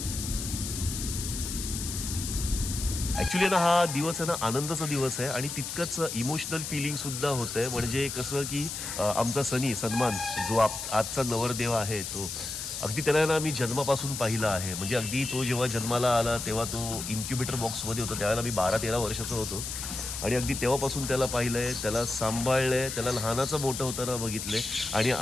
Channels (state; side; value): noise; left; hiss, 6 dB below the sound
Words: ऍक्च्युली ना हा दिवस आहे ना आनंदाचा दिवस आहे आणि तितकंच इमोशनल फिलिंग सुद्धा होतंय। म्हणजे कसं की आमचा सन्मान जो आजचा नवरदेव आहे, तो अगदी त्याला ना मी जन्मापासून पाहिला आहे। म्हणजे अगदी तो जेव्हा जन्माला आला तेव्हा तो इन्क्युबेटर बॉक्समध्ये होता, त्यावेळेला मी 12-13 वर्षाचा होतो आणि अगदी तेव्हापासून त्याला पाहिलंय, त्याला सांभाळलंय, त्याला लहानाचं मोठं होताना बघितलंय आणि